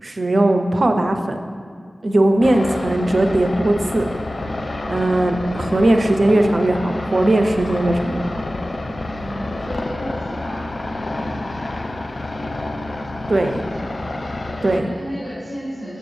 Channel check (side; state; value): both; normal; correlation 0.96